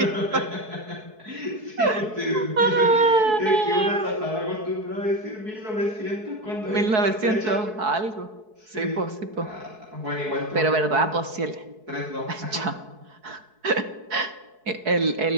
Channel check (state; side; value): late; left; 4.7 ms